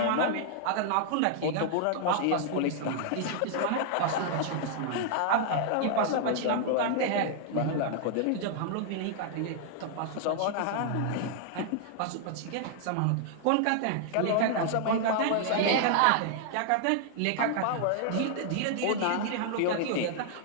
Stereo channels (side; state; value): both; different; correlation -0.01